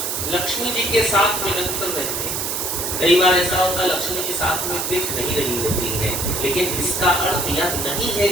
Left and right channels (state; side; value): noise; right; hiss, 2 dB below the sound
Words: लक्ष्मी जी के साथ में निरंतर रहते हैं। कई बार ऐसा होता है लक्ष्मी जी साथ में दिख नहीं रही होती है, लेकिन इसका अर्थ यह नहीं है